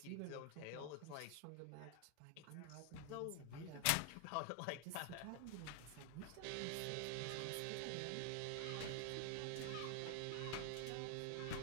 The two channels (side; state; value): both; different; correlation 0.00